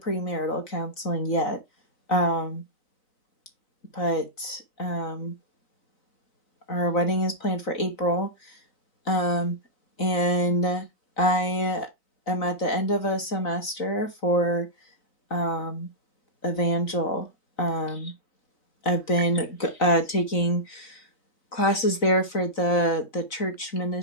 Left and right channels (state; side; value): late; right; 3.9 ms